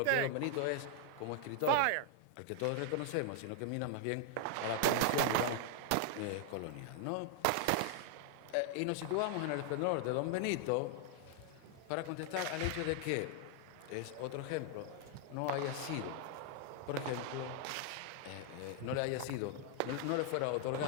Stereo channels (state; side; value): different; both; correlation 0.00